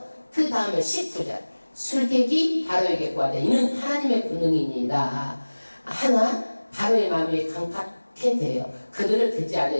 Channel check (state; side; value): inverted; both; correlation -1.00